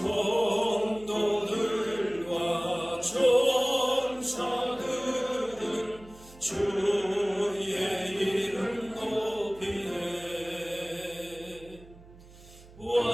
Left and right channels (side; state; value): right; noise; hum, 21 dB below the sound